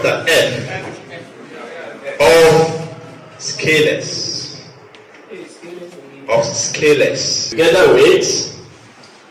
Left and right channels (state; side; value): identical; both; correlation 1.00